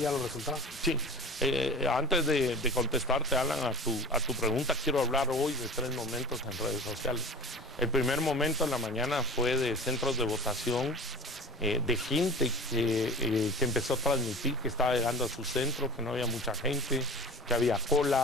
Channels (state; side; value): normal; both; correlation 0.37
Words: ya los resultados. Sí, antes de contestarte, Alan, a tu pregunta, quiero hablar hoy de 3 momentos en redes sociales. El primer momento en la mañana fue de centros de votación, de gente que empezó a transmitir que estaba llegando a su centro, que no había mucha gente, que había